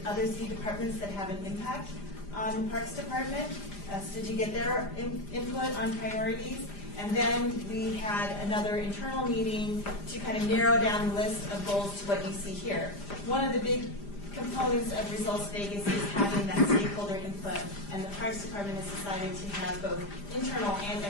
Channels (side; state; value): right; late; 5.0 ms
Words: other city departments that have an impact on the Parks Department, so to get their input on priorities. And then we had another internal meeting to kind of narrow down the list of goals to what you see here. One of the big components of Results Vegas is having that stakeholder input, and the Parks Department has decided to have both internal and